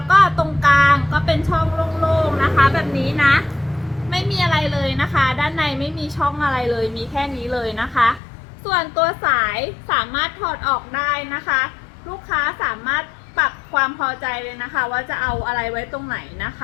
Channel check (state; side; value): drops out; right; at 8.2 s